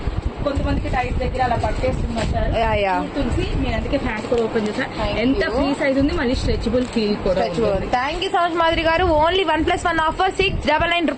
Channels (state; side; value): identical; both; correlation 1.00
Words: కొంతమందికి టైట్ దగ్గర అలా పట్టేస్తున్నారు తులసి. నేను అందుకే ప్యాంట్ కూడా ఓపెన్ చేశాను. ఎంత ఫ్రీ సైజ్ ఉంది, మళ్ళీ స్ట్రెచబుల్ ఫీల్ కూడా. Thank you so much Madhuri గారు. ఓన్లీ 1+1 ఆఫర్ 699